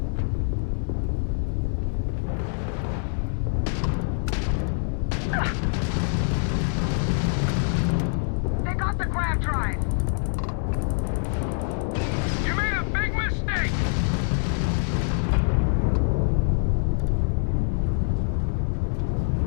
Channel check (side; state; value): right; silent; 62 dB below the other